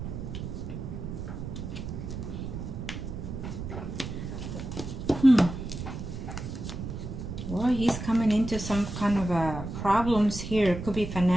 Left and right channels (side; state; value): right; noise; rumble, 7 dB below the sound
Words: Well, he's coming into some kind of problems here. It could be